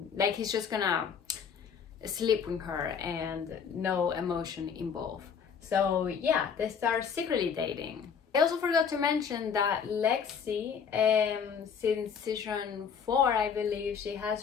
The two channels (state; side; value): quieter; right; 6.8 dB